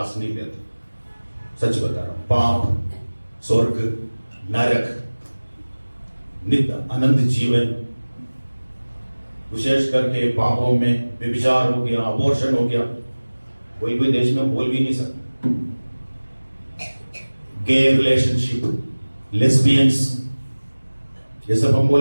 नहीं लेते, सच बता रहा हूं। पाप, स्वर्ग, नरक, नित्य अनंत जीवन, विशेष करके पापों में व्यभिचार हो गया, अबॉर्शन हो गया, कोई कोई देश में बोल भी नहीं सकता। गे रिलेशनशिप, लेस्बियंस, ये सब हम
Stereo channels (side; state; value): both; inverted; correlation -1.00